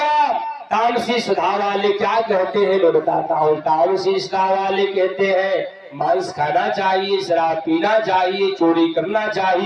तामसी सुधा वाले क्या कहते हैं मैं बताता हूँ। तामसी सुधा वाले कहते हैं मांस खाना चाहिए, शराब पीना चाहिए, चोरी करना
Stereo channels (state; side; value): identical; both; correlation 1.00